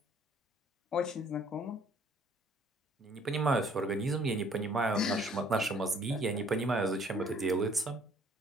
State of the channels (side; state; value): both; normal; correlation 0.58